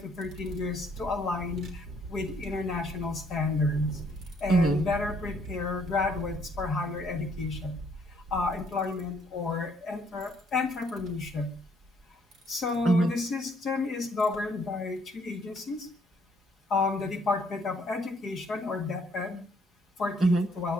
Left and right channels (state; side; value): normal; both; correlation 0.66